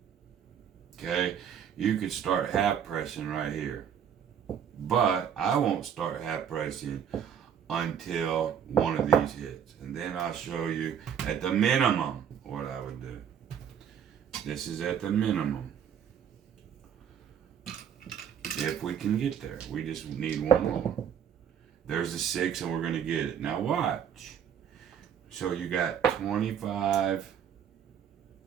Okay? You could start half pressing right here. But I won't start half pressing until one of these hits. And then I'll show you at the minimum what I would do. This is at the minimum. If we can get there. We just need one more. There's the 6 and we're going to get it. Now watch. So you got 25,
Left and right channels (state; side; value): quieter; left; 8.4 dB